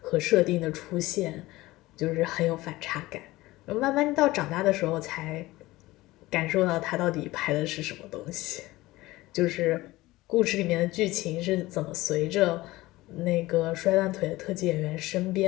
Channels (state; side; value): quieter; right; 18.8 dB